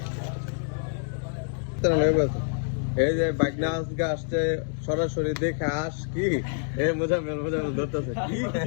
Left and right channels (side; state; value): right; silent; digital silence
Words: এই যে বাগনা আজকে আসছে সরাসরি দেখে আস কি মজা ধরতেছে